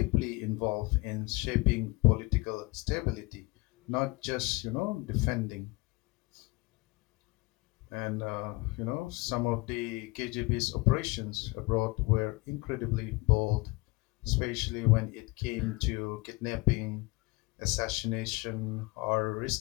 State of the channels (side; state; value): right; quieter; 23.0 dB